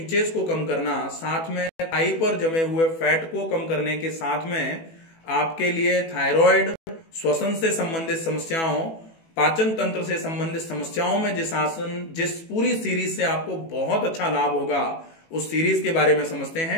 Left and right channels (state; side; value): late; right; 18 ms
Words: को कम करना, साथ में थाई पर जमे हुए फैट को कम करने के साथ में आपके लिए थायराइड, श्वसन से संबंधित समस्याओं, पाचन तंत्र से संबंधित समस्याओं में जिस पूरी सीरीज से आपको बहुत अच्छा लाभ होगा, उस सीरीज के बारे में समझते